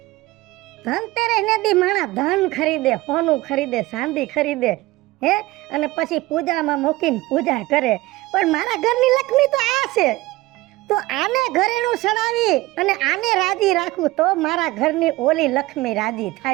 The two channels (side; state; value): left; quieter; 19.4 dB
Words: ધનતેરસ ને દી માણા ધન ખરીદે, સોનું ખરીદે, ચાંદી ખરીદે હે, અને પછી પૂજામાં મૂકીને પૂજા કરે. પણ મારા ઘરની લક્ષ્મી તો આ છે, તો આને ઘરેણું સડાવી અને આને રાજી રાખું તો મારા ઘરની ઓલી લક્ષ્મી રાજી